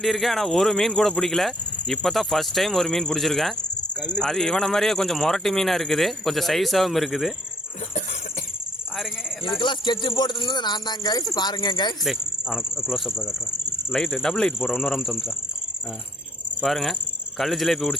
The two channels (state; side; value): normal; both; correlation 0.63